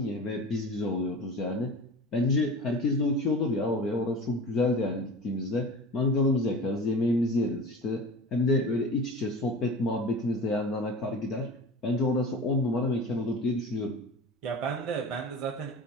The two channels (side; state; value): both; normal; correlation 0.35